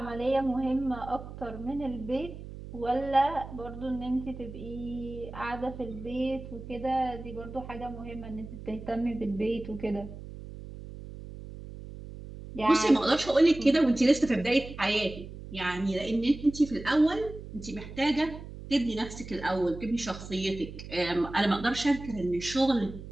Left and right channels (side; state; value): right; noise; hum, 12 dB below the sound